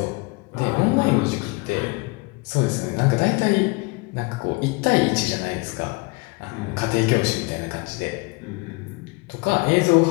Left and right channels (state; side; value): quieter; right; 27.2 dB